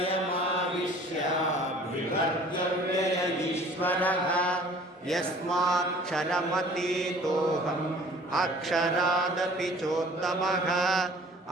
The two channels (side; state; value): both; normal; correlation 0.50